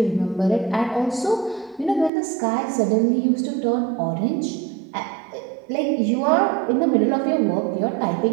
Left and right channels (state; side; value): drops out; left; at 2.1 s